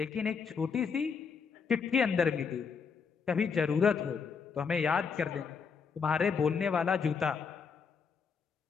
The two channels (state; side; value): quieter; right; 5.9 dB